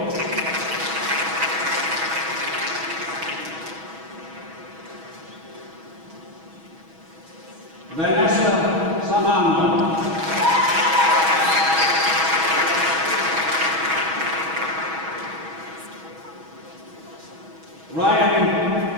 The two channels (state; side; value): late; left; 6.2 ms